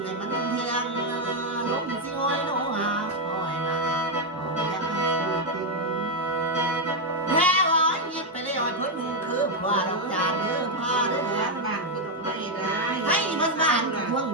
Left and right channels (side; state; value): both; normal; correlation 0.02